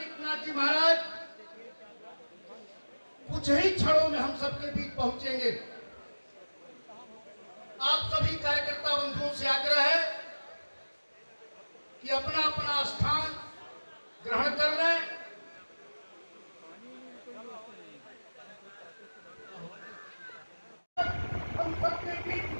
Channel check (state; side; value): inverted; both; correlation -1.00